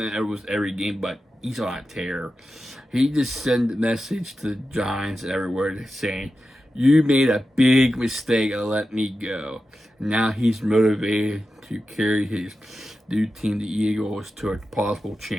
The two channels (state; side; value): normal; both; correlation 0.91